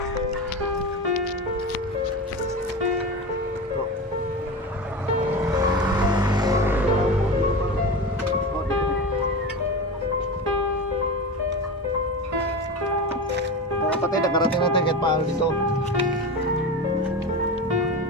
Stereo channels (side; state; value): both; normal; correlation 0.25